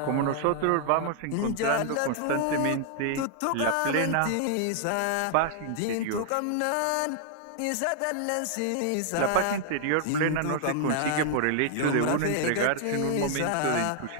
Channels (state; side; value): different; both; correlation -0.01